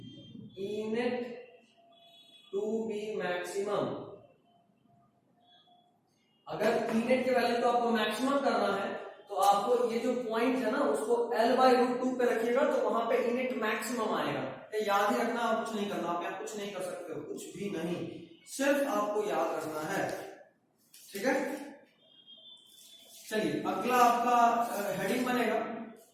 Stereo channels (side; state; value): both; identical; correlation 1.00